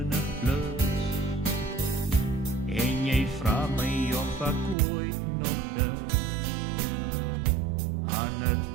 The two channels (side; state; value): left; drops out; at 4.8 s